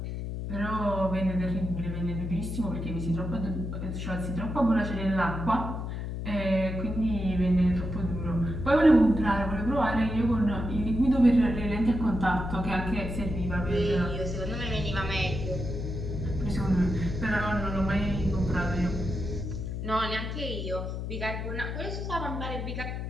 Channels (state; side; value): noise; left; hum, 4 dB below the sound